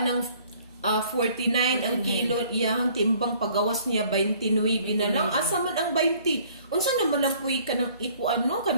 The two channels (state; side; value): inverted; both; correlation -0.57